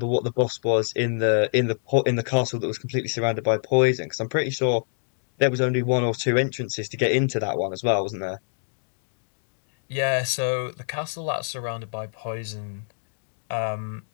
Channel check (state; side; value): silent; right; digital silence